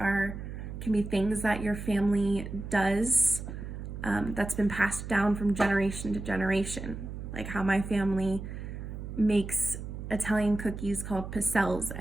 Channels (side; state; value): right; noise; hum, 8 dB below the sound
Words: be things that your family does that's been passed down from generation to generation. Like how my family makes Italian cookies called pastel